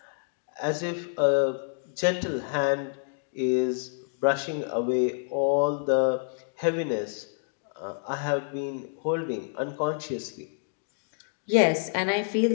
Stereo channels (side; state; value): right; silent; digital silence